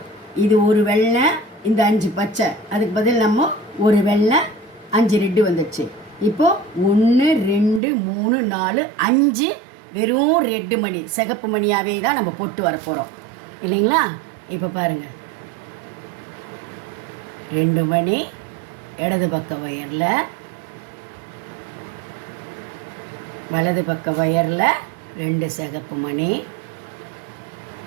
இது ஒரு வெள்ளை, இந்த 5 பச்சை, அதுக்கு பதில் நம்ம ஒரு வெள்ளை 5 ரெட்டு வந்துடுச்சு. இப்போது 1 2 3 4 5 வெறும் ரெட்டு மணி, சிகப்பு மணியாகவே தான் நம்ம போட்டு வர போகிறோம் இல்லைங்களா? இப்போ பாருங்கள், 2 மணி இடது பக்க ஒயரில், வலது பக்க ஒயரில் 2 சிகப்பு மணி.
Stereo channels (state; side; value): drops out; left; at 7.8 s